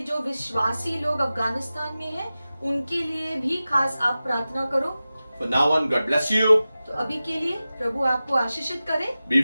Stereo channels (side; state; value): both; inverted; correlation -0.95